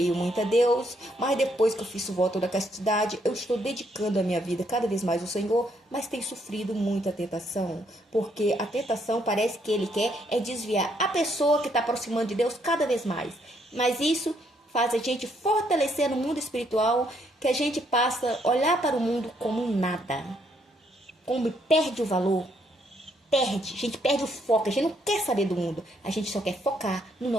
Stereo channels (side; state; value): both; normal; correlation 0.72